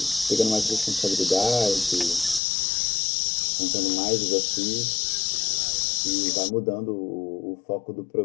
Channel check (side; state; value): right; drops out; at 2.4 s